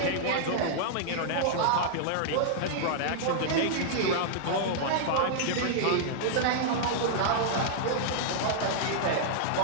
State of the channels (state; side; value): different; both; correlation -0.02